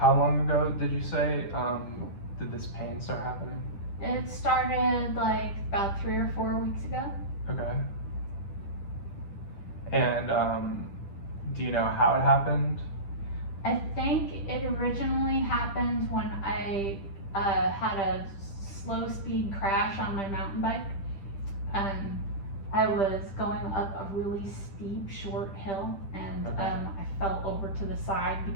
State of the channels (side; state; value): right; late; 10 ms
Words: long ago did you say did this pain start happening? It started like about 3 or 4 weeks ago. Okay. And do you know how it happened? I think it originally happened when I had a slow speed crash on my mountain bike. I was going up a really steep, short hill, and Okay. I fell over to the side